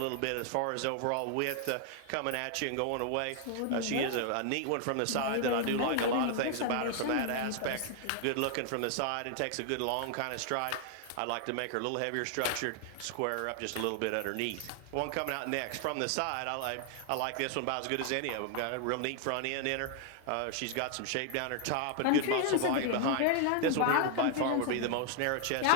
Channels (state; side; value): different; both; correlation 0.00